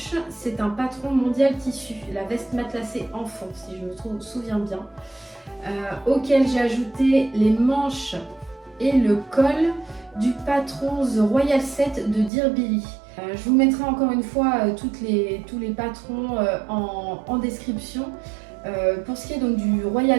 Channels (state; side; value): drops out; left; at 12.3 s